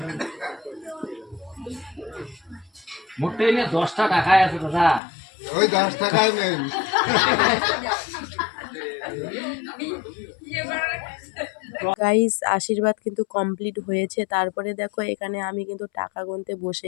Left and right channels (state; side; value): drops out; right; at 5.0 s